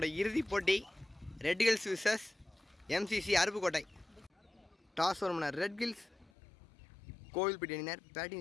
இறுதிப் போட்டி Red Hills versus MCC Aruppukottai. Toss ஒரு மணி ரெட் ஹில்ஸ் கோவில்பட்டி அணியினர்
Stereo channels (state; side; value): drops out; right; at 6.3 s